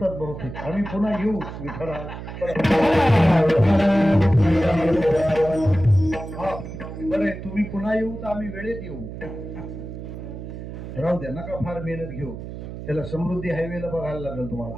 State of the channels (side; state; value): right; noise; hum, 10 dB below the sound